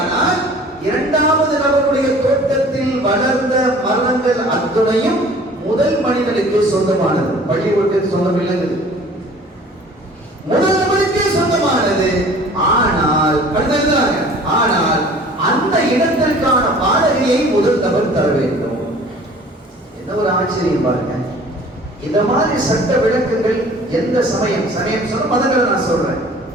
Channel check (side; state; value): both; normal; correlation 0.48